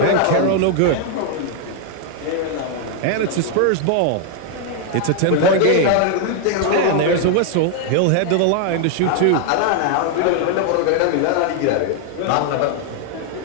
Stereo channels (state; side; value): different; both; correlation 0.00